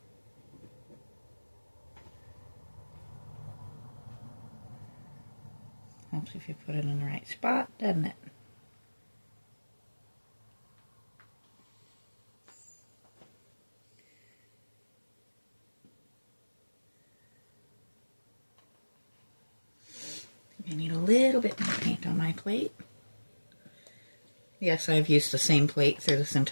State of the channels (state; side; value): inverted; both; correlation -1.00